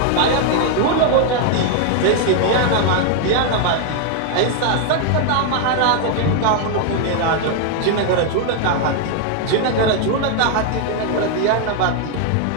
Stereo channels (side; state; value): both; different; correlation 0.00